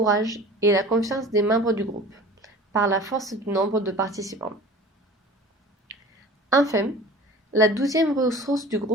et la confiance des membres du groupe, par la force du nombre de participants. Enfin, la douzième ressource du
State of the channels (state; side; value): normal; both; correlation 0.41